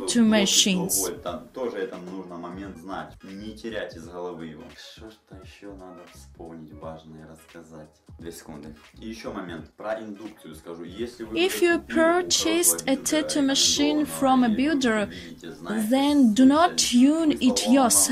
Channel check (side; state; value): both; identical; correlation 1.00